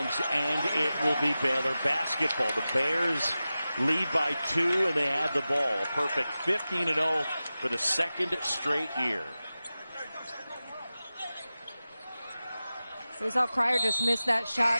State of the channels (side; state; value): both; inverted; correlation -0.95